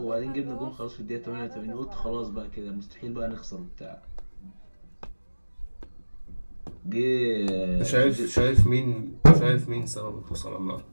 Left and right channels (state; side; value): inverted; both; correlation -1.00